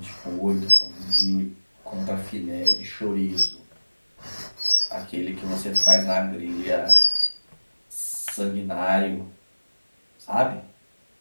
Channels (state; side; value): inverted; both; correlation -1.00